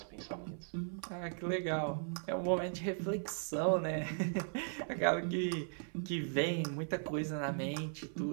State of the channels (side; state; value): left; silent; 53 dB below the other